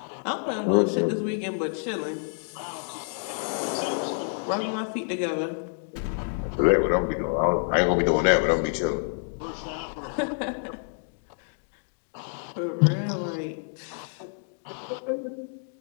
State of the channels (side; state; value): right; silent; 59 dB below the other